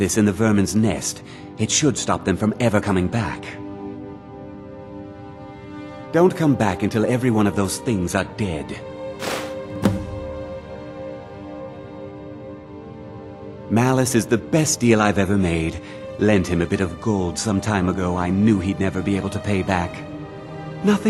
in the vermin's nest, it should stop them from ever coming back. Don't come back until every one of those things are dead. Malus is the best deal I've ever made. Lent him a bit of gold some time ago I knew he'd never be able to pay back.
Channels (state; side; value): identical; both; correlation 1.00